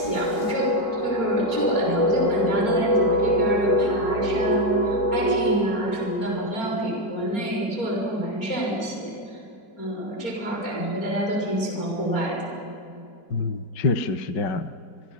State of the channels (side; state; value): right; late; 4.3 ms